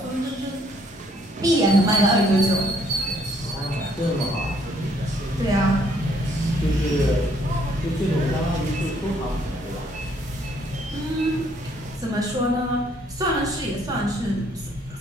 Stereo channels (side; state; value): both; normal; correlation 0.66